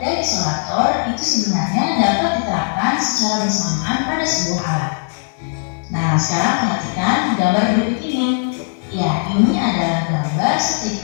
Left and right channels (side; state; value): right; silent; 67 dB below the other